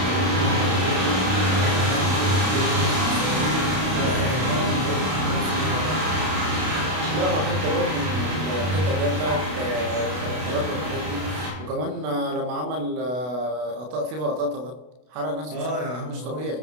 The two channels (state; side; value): late; left; 32 ms